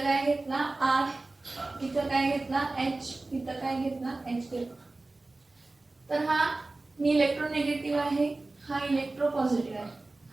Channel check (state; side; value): quieter; left; 3.1 dB